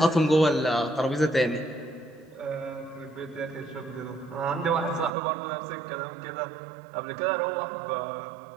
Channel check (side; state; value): left; drops out; at 5.1 s